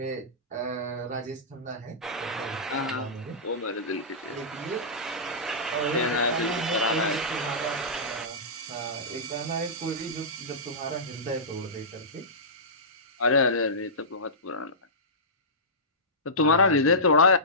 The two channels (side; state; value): both; normal; correlation -0.17